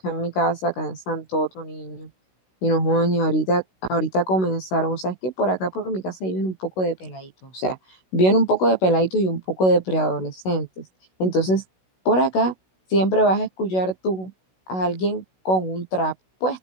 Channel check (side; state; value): right; late; 16 ms